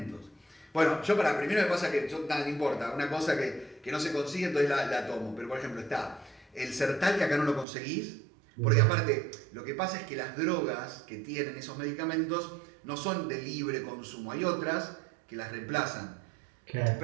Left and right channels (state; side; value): drops out; left; at 7.7 s